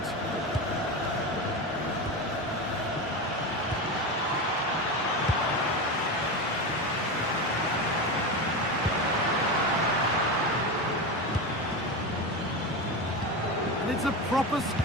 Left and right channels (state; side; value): normal; both; correlation 0.20